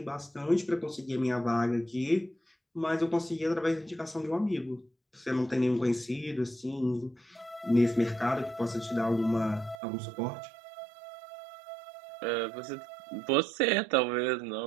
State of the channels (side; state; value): left; drops out; at 9.8 s